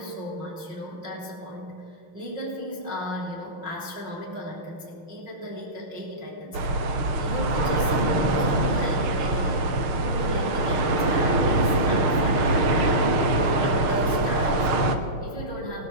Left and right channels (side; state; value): left; late; 6.5 ms